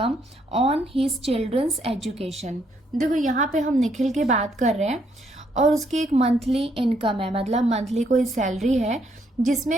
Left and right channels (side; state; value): both; normal; correlation 0.72